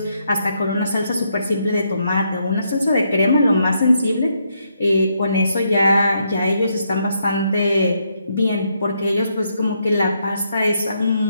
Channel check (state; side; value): inverted; both; correlation -0.77